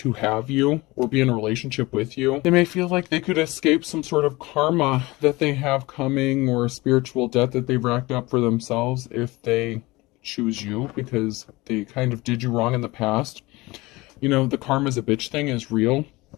have you or be in a relationship with you. They may feel like they could escape some sort of karma that they have coming, or a spiritual debt that they've racked up for themselves if they choose you because they kind of did you wrong in the past. The karma's a bitch thing is real.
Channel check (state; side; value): quieter; right; 21.6 dB